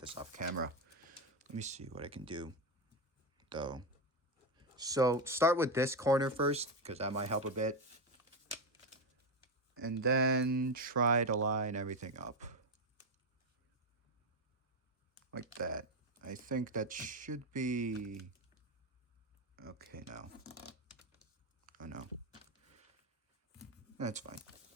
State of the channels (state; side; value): normal; both; correlation 0.11